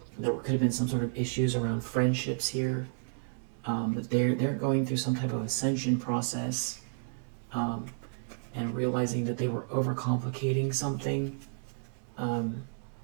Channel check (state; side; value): silent; left; digital silence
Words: could have been some sort of issues around friendships here. That they're going through some type of ascension process, and realizing that they were overcomplicating something, and